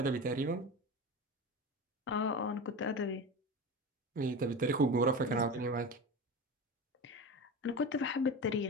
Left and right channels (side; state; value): both; normal; correlation 0.27